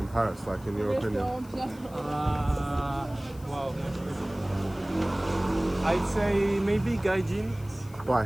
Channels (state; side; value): noise; left; hiss, 24 dB below the sound